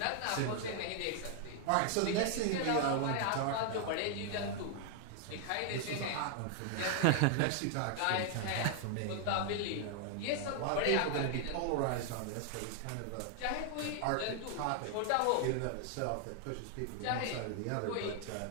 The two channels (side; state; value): both; different; correlation 0.00